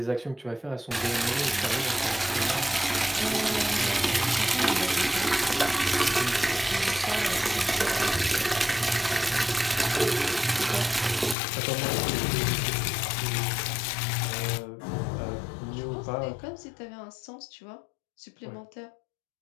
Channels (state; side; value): drops out; right; at 11.4 s